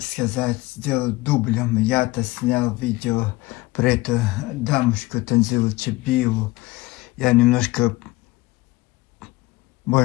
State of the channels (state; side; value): quieter; right; 20.3 dB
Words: сказать, сделать дублем. Я-то снял видео про эту дамочку Танзилу Чебиеву. Я немножко,